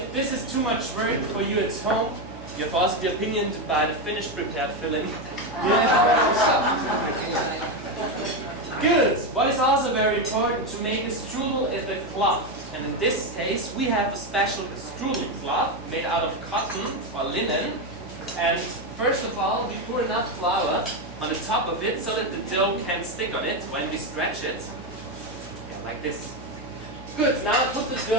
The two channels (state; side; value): noise; left; hum, 16 dB below the sound